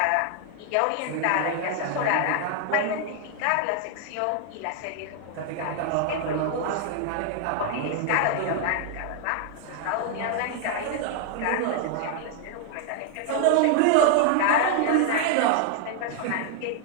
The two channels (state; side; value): different; both; correlation 0.00